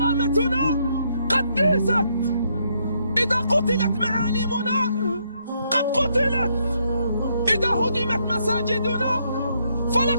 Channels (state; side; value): inverted; both; correlation -0.74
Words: قد ديست، إذا قتلت معالمنا قد قتلت، إذا هدمت مساجدنا